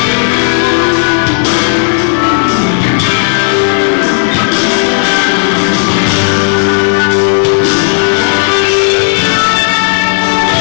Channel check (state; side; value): silent; right; digital silence